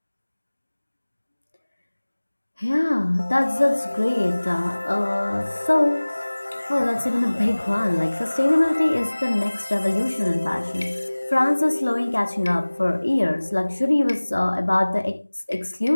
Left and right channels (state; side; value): inverted; both; correlation -1.00